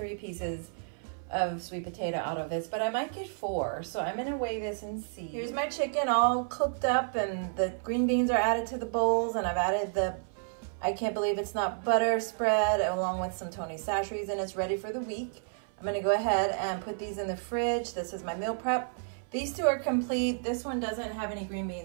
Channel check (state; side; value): silent; left; 57 dB below the other